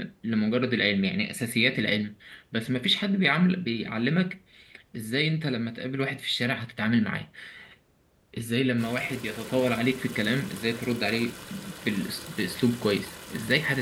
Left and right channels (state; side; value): identical; both; correlation 1.00